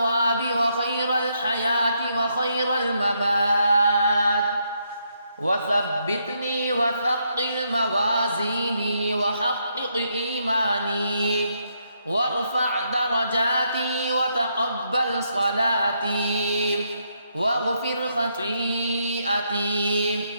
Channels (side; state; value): both; inverted; correlation -0.77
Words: وخير الحياة وخير الممات، وثبتني وثقل موازيني وحقق إيماني وارفع درجاتي وتقبل صلاتي واغفر خطيئتي،